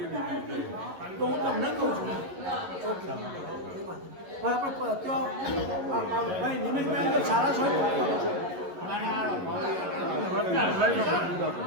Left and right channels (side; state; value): left; late; 11 ms